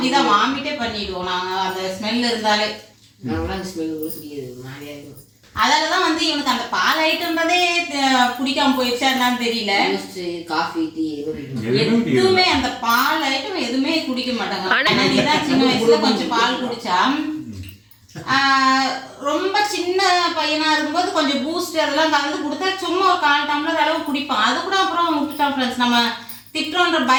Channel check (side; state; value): both; identical; correlation 1.00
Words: வாமிட்டே பண்ணிடுவோம் நாங்க அந்த ஸ்மெல் இருந்தாலே. அதனாலதான் வந்து இவனுக்கு அந்த பால் ஐட்டம்ன்றதே பிடிக்காம போயிடுச்சா என்னன்னு தெரியல. காஃபி டீ எதுவுமே அந்த பால் ஐட்டம் எதுவுமே குடிக்க மாட்டாங்க. நீதான் சின்ன வயசுல கொஞ்சம் பால் குடிச்சா, ரொம்ப சின்ன பையனா இருக்கும்போது கொஞ்சம் பூஸ்ட் அதெல்லாம் கலந்து கொடுத்தா சும்மா ஒரு 1/4 டம்ளர் அளவு குடிப்பான். அது கூட அப்புறம் விட்டுட்டான் ஃப்ரெண்ட்ஸ். நம்ம திட்டுறோன்ற